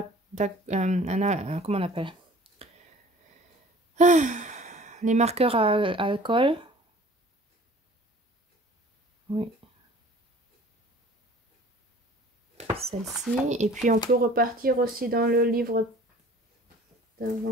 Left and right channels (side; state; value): both; normal; correlation 0.48